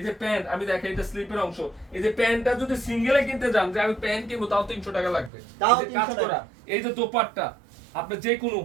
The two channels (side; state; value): left; drops out; at 5.3 s